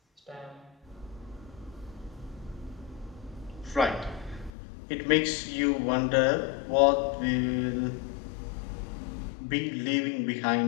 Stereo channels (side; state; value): right; drops out; at 4.5 s